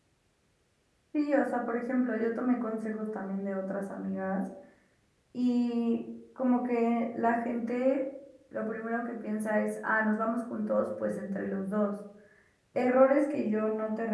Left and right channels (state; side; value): identical; both; correlation 1.00